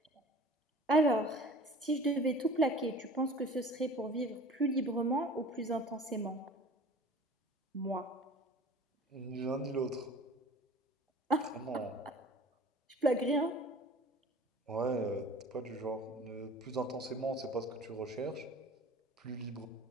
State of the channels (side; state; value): both; normal; correlation 0.43